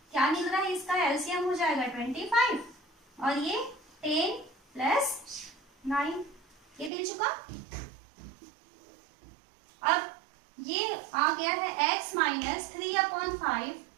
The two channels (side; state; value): left; drops out; at 6.9 s